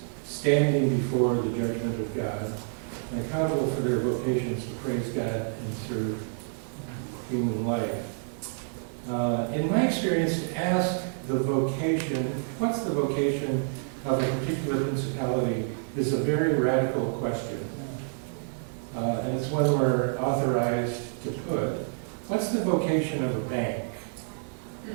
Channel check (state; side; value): silent; left; digital silence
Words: standing before the judgment of God, and accountable for their vocations to praise God and serve human life. In my experience, to ask the vocation, what's the vocation of a particular principality, is a very radical question. And it's one we're authorized to put. What's the vocation of a bank?